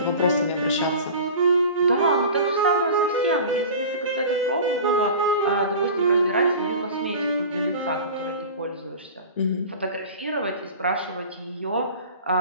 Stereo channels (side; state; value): both; inverted; correlation -0.37